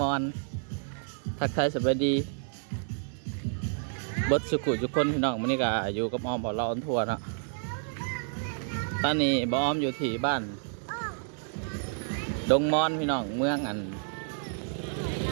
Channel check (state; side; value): silent; left; 58 dB below the other